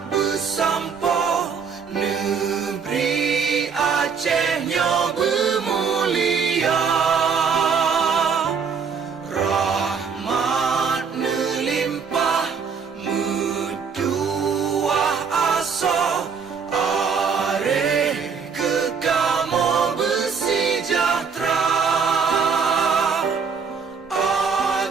bersampo, negeri Acehnya bermulia. Rahmat melimpah, metuah aso, are kekamo bersejahtera.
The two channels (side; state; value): left; quieter; 6.0 dB